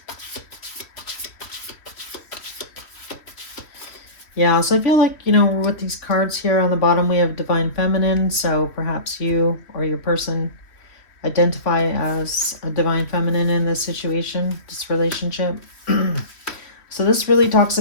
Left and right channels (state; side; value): late; right; 3.1 ms